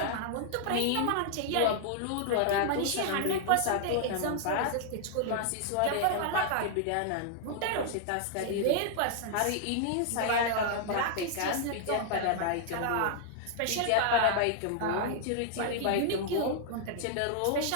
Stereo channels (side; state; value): both; different; correlation 0.00